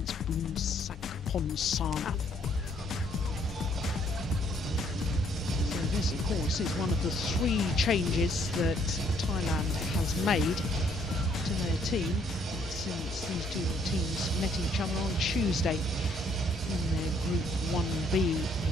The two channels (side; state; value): both; normal; correlation 0.67